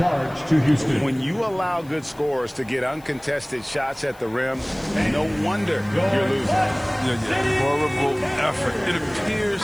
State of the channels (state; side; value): noise; left; hiss, 26 dB below the sound